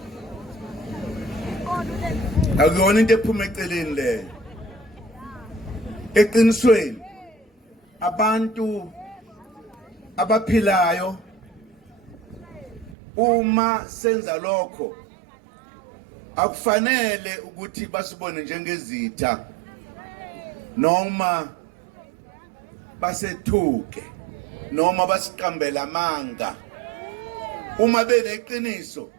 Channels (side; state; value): left; drops out; at 13.0 s